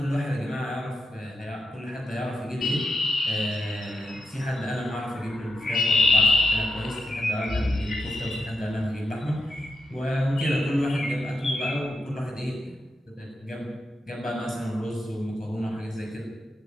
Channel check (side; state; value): both; normal; correlation 0.83